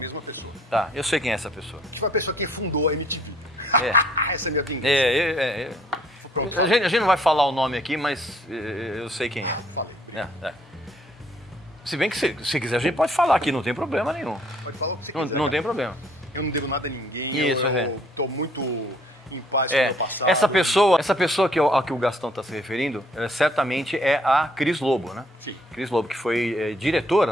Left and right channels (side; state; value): both; normal; correlation 0.62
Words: pessoa. Tá, eu sei quem é essa pessoa. Que foi a pessoa que fundou a MTV. Essa é a minha vingança. Pronto, a gente não vai falar o nome aqui, mas eu sei quem é. Falei. Se bem que se quiser, a gente pode falar aqui, não tem problema nenhum. Pode falar o que você quiser. Não tem problema. Eu não devo nada a ninguém. Isso, eu tô muito em paz com o meu passado. Essa pessoa a que o Gastão está se referindo, certamente é a Cris Lobo, né? Sim. Cris Lobo, que foi